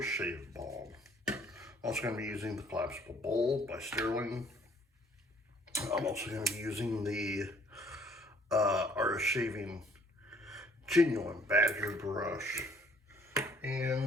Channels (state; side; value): normal; both; correlation 0.61